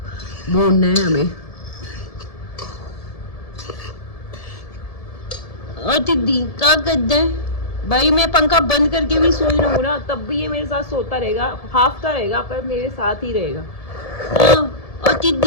भूनना है हमें। और दीदी क्या करते हैं भाई, मैं पंखा बंद करके भी सोई रहूँ ना तब भी ये मेरे साथ सोता रहेगा, हाफता रहेगा पर मेरे साथ ही रहेगा। और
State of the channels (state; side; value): late; right; 1.7 ms